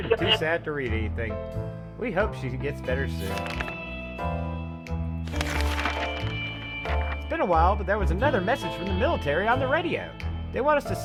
and too sad to read anything. We hope she gets better soon. It's been a while, but there was another message from the military on the radio. They want us to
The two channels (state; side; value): identical; both; correlation 1.00